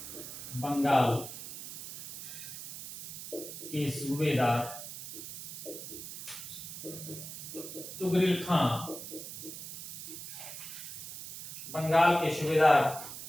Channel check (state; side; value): noise; right; hiss, 10 dB below the sound